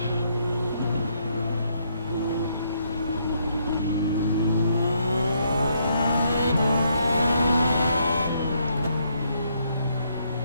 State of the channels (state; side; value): inverted; both; correlation -0.73